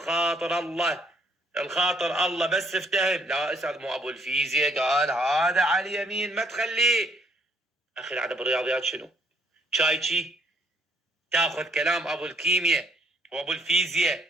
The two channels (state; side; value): normal; both; correlation 0.66